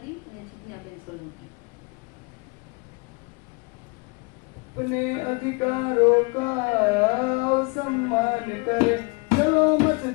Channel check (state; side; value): quieter; right; 30.1 dB